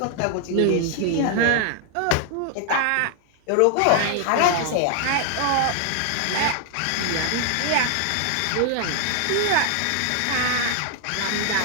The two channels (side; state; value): both; different; correlation 0.00